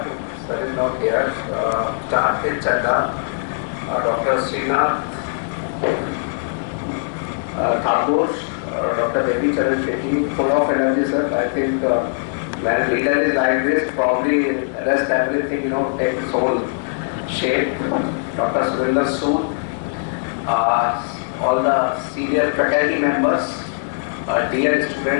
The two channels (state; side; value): silent; right; digital silence